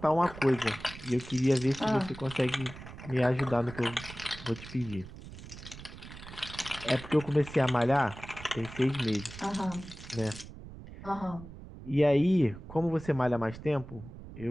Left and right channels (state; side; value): noise; right; rumble, 14 dB below the sound